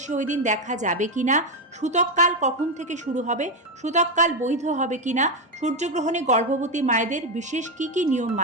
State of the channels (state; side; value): normal; both; correlation 0.08